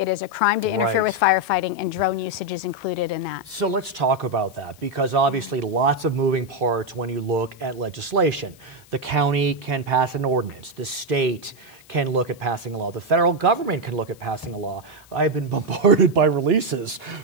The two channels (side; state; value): left; noise; hiss, 26 dB below the sound